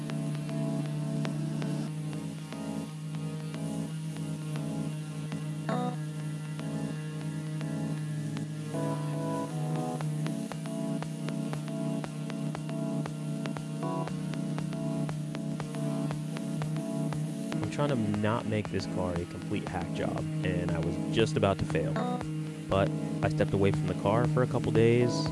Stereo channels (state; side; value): identical; both; correlation 1.00